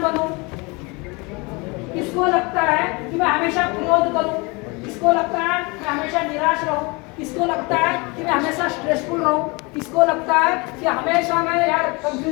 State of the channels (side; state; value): right; quieter; 27.5 dB